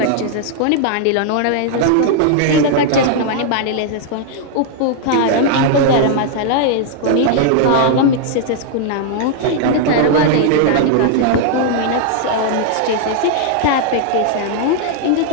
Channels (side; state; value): both; different; correlation 0.00